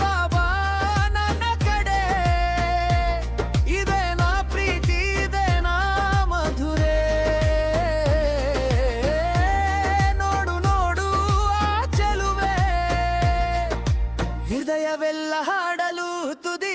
ಬಾಬಾ ನನ್ನ ಕಡೆ, ಇದೇನಾ ಪ್ರೀತಿ ಇದೇನಾ ಮಧುರೆ, ನೋಡು ನೋಡು ಆ ಚೆಲುವೆ, ಹೃದಯವೆಲ್ಲ ಹಾಡಲು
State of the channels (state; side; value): identical; both; correlation 1.00